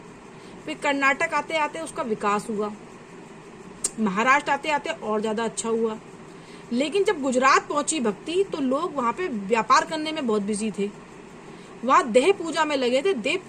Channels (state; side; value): identical; both; correlation 1.00